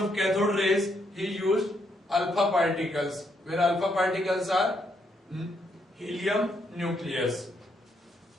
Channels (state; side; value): normal; both; correlation 0.76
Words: cathode rays he used alpha particles, where alpha particles are helium nucleus.